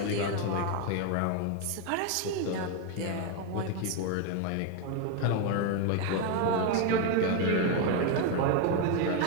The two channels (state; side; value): different; both; correlation 0.01